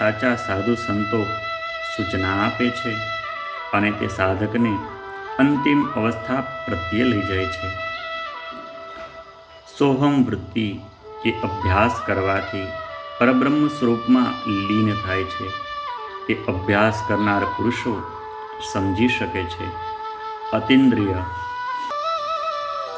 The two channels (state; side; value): identical; both; correlation 1.00